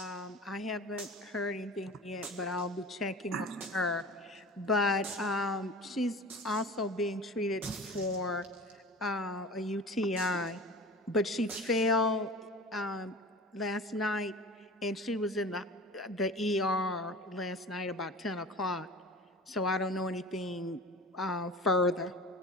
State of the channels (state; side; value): normal; both; correlation 0.37